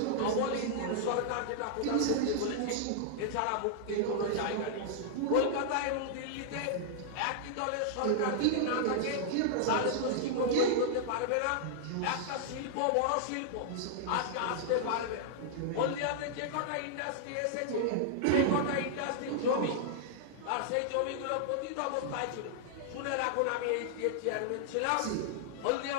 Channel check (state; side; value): different; both; correlation -0.01